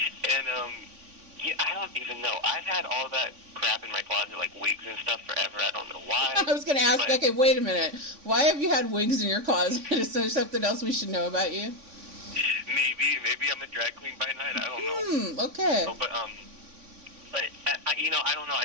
And, I don't even know. I've had all that crap in my closet, like wigs and stuff, forever. I don't know why. I was going to ask, okay, wait a minute. Why have you had wigs in your closet? Is there something else we should know about you? Maybe I'm a drag queen by night. I don't know. Okay. No, but I don't know. I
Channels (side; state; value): left; late; 3.5 ms